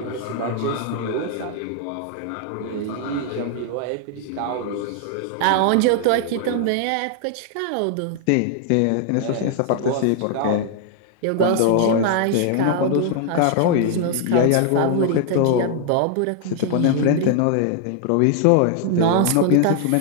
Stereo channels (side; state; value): both; different; correlation 0.00